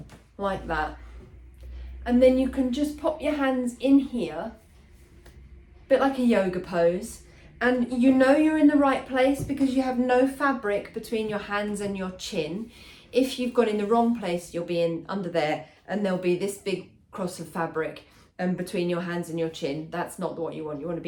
like that. And then you can just pop your hands in here, a bit like a yoga pose. And you know you're in the right place because you have no fabric between your hands and your chin. If you've got in the wrong place, you'll be in under there, and there'll be this big cross of fabric between your hands and your chin. That's not what you want. You want to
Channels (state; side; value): identical; both; correlation 1.00